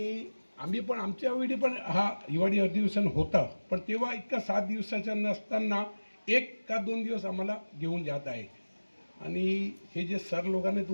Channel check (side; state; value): both; inverted; correlation -1.00